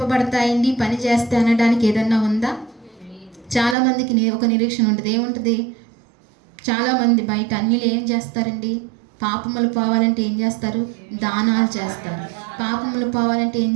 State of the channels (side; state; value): left; drops out; at 3.8 s